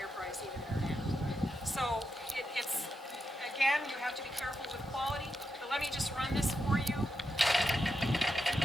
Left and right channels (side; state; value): both; normal; correlation 0.86